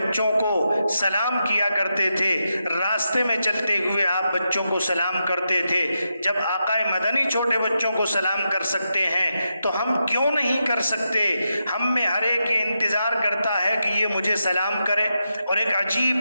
کو سلام کیا کرتے تھے، راستے میں چلتے ہوئے آپ بچوں کو سلام کرتے تھے۔ جب آقا مدنی چھوٹے بچوں کو سلام کر سکتے ہیں تو ہم کیوں نہیں کر سکتے؟ ہم میں ہر ایک یہ انتظار کرتا ہے کہ یہ مجھے سلام کرے۔ اور ایک عجیب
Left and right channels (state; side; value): inverted; both; correlation -0.86